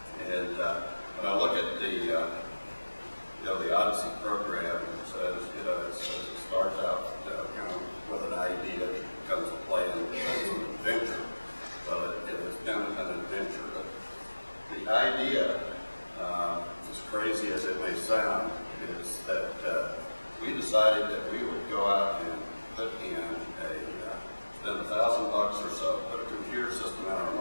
And when I look at the the Odyssey program, it says, it starts out kind of with an idea that becomes a plan, and becomes an adventure. Well, it has been an adventure, but the idea, as crazy as it may sound, is that we decided that we would go out and put in spend $1,000 or so, put a computer system in our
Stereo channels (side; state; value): both; inverted; correlation -1.00